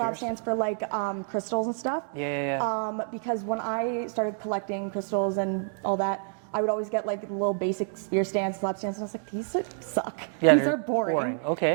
stands for like crystals and stuff. Yeah. Because when I started collecting crystals and all that, I would always get like little basic sphere stands, slab stands, and I was like, these suck. Yeah, These are boring. Okay.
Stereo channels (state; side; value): silent; left; 59 dB below the other